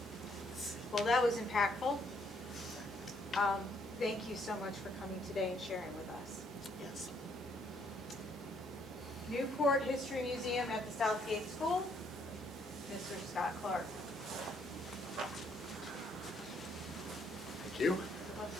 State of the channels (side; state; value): both; normal; correlation 0.69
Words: Well, that was impactful. Thank you so much for coming today and sharing with us. Yes. Newport History Museum at the Southgate School, Mr. Scott Clark. Thank you.